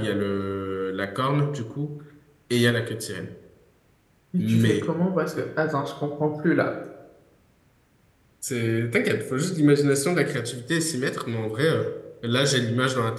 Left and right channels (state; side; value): identical; both; correlation 1.00